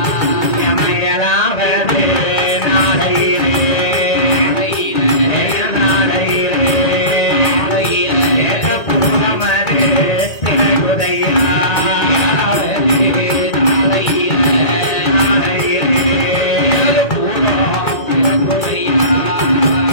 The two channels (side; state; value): right; late; 1.9 ms